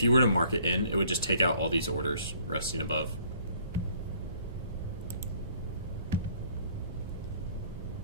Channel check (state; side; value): inverted; both; correlation -0.59